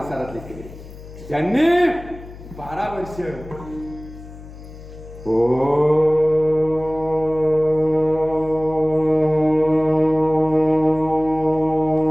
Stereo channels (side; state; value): left; noise; hum, 16 dB below the sound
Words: केले ज्यांनी 12 वर्ष